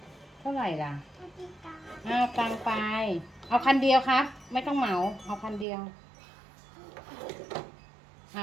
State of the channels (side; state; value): left; drops out; at 5.7 s